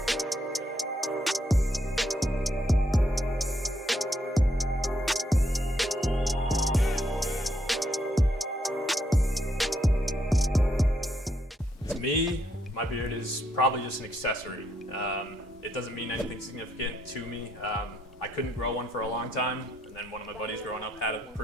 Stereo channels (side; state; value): both; normal; correlation 0.75